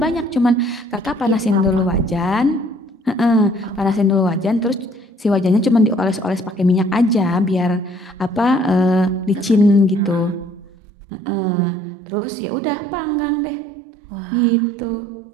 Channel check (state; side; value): drops out; left; at 10.7 s